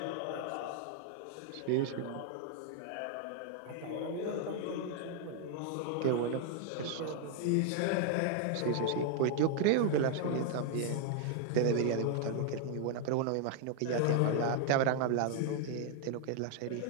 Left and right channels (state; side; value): different; both; correlation 0.00